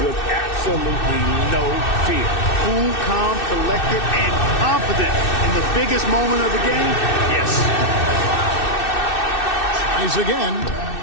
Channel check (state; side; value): late; right; 2.6 ms